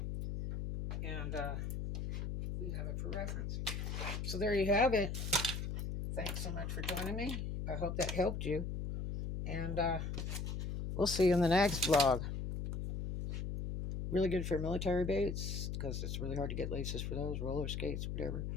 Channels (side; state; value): left; noise; hum, 3 dB below the sound